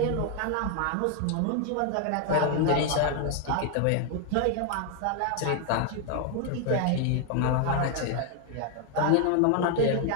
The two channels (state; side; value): different; both; correlation 0.00